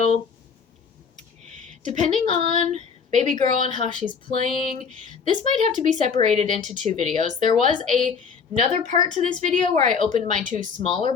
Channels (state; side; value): quieter; right; 6.0 dB